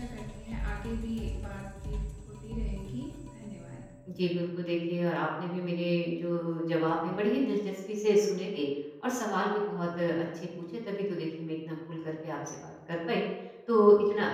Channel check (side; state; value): both; identical; correlation 1.00